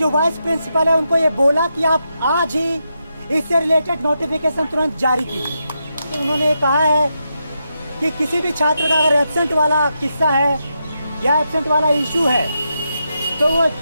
वाइस प्रिंसिपल है उनको ये बोला कि आप आज ही इससे रिलेटेड नोटिफिकेशन तुरंत जारी कीजिए। तो उन्होंने कहा है कि किसी भी छात्र का अगर एब्सेंट वाला किस्सा है या एब्सेंट वाला इशू है तो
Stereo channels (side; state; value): both; inverted; correlation -0.85